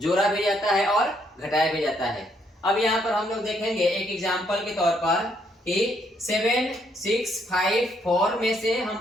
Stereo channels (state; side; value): normal; both; correlation 0.72